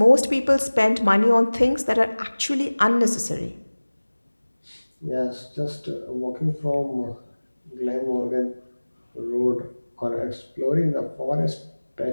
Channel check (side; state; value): both; inverted; correlation -1.00